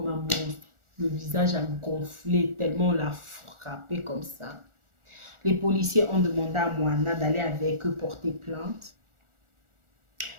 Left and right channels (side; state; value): left; late; 1.4 ms